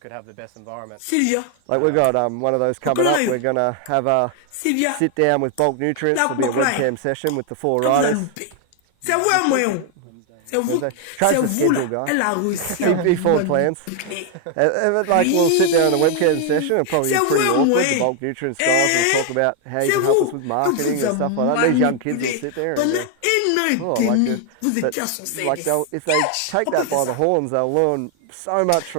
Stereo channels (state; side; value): different; both; correlation 0.00